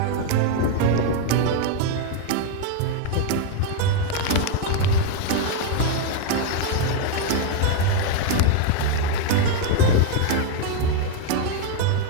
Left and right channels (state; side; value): different; both; correlation 0.01